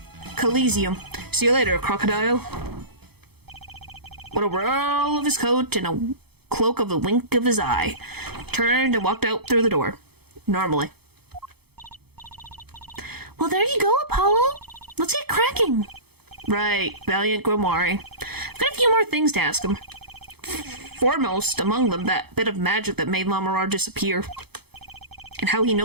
Coliseum. See you later, crocodile. With a whirl of his coat and a cloak of a wink of his eye, turned and walked out through the door. Normally. Well, there you go, Apollo. Let's get cracking. Right, Valiant Grimoire. I've got a few more things to ask him. Foremost among them, that bit of magic that made Lamarar disappear. And how he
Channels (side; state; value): left; late; 0.97 ms